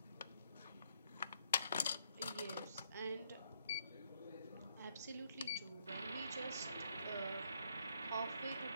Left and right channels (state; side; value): inverted; both; correlation -0.72